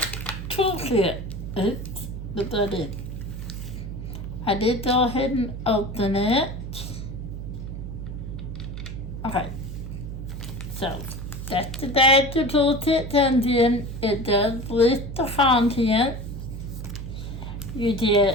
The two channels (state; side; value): noise; right; hum, 7 dB below the sound